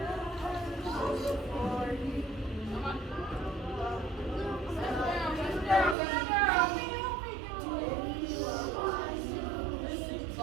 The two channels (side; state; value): left; drops out; at 6.0 s